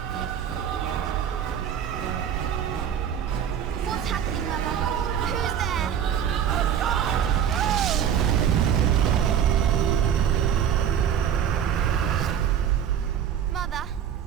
What's happening, Mother? Who's there? Mother?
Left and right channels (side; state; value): left; quieter; 9.0 dB